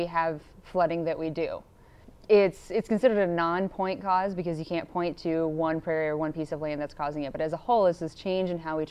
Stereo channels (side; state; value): both; identical; correlation 1.00